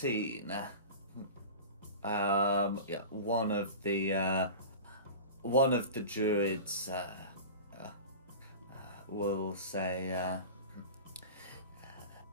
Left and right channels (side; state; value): both; inverted; correlation -0.33